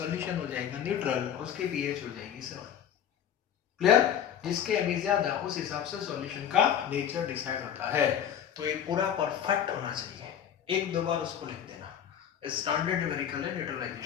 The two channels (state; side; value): quieter; right; 9.2 dB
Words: हो जाएगा न्यूट्रल, उसके पीएच हो जाएगी 7। क्लियर? जिसके एम ज्यादा उस हिसाब से सॉल्यूशन का नेचर डिसाइड होता है। तो ये पूरा परफेक्ट होना चाहिए। एक दो बार उसको लिख देना, स्टैंडर्ड न्यूमेरिकल है